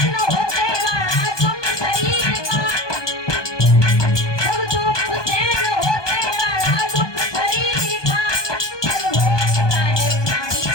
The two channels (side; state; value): right; late; 1.2 ms